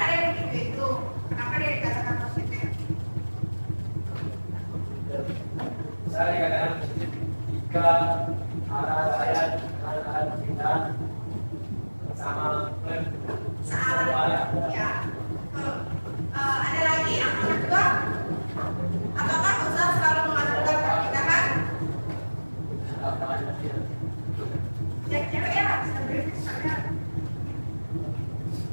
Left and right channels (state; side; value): inverted; both; correlation -1.00